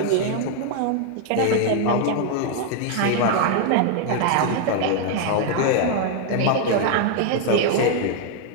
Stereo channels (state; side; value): different; both; correlation 0.00